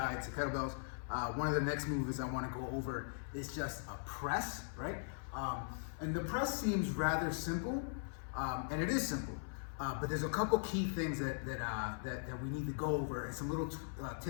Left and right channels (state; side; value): silent; right; 51 dB below the other